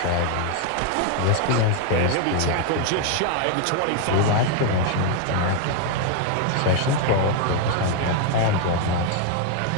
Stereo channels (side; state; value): both; different; correlation 0.00